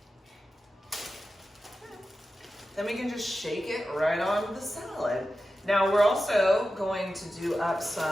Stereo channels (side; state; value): both; normal; correlation 0.92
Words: Then we can just shake it right onto the salad. Now we're also going to do up